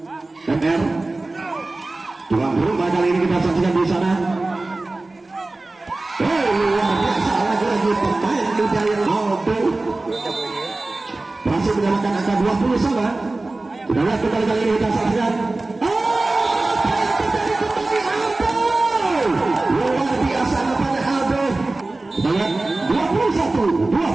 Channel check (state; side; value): quieter; left; 3.1 dB